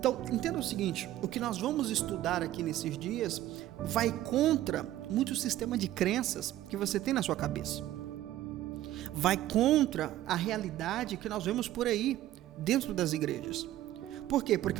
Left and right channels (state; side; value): quieter; left; 14.0 dB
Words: entenda o seguinte, o que nós vamos estudar aqui nesses dias vai contra muito sistema de crenças que você tem na sua cabeça. Vai contra a realidade que nós vemos por aí, dentro das igrejas. Por quê?